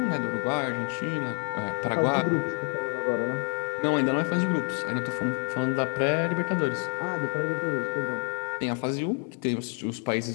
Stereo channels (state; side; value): quieter; right; 35.7 dB